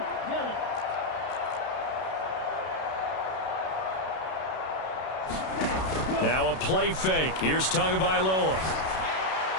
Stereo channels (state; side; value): late; right; 32 ms